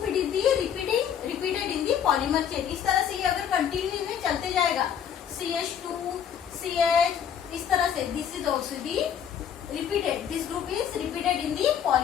it is the repeated in the polymer chain. इस तरह से ये अगर कंटिन्यू में चलते जाएगा, CH2, CH, इस तरह से this is also the repeated. This group is repeated in the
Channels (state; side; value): quieter; right; 8.6 dB